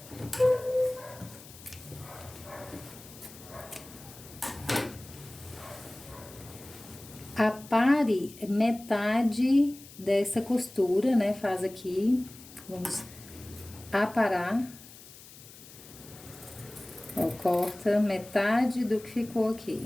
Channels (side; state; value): left; noise; hiss, 19 dB below the sound